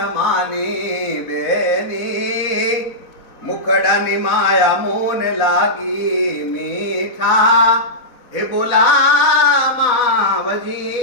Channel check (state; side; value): late; right; 4.0 ms